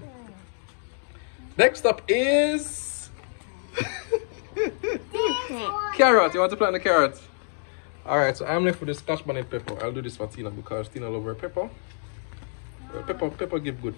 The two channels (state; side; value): silent; right; digital silence